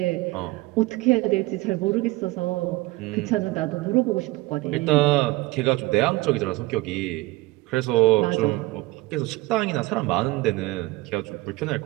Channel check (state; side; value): quieter; left; 20.6 dB